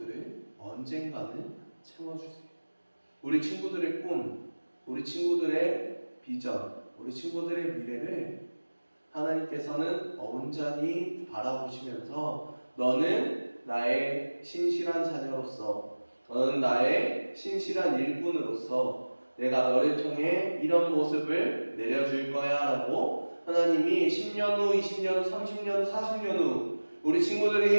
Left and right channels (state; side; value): inverted; both; correlation -1.00